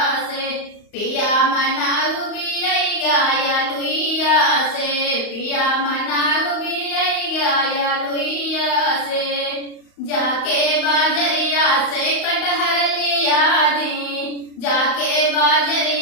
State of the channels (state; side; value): late; right; 35 ms